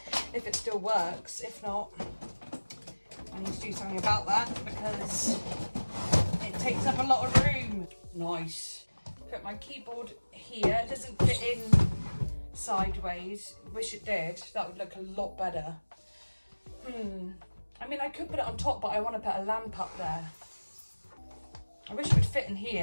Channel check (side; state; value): both; inverted; correlation -1.00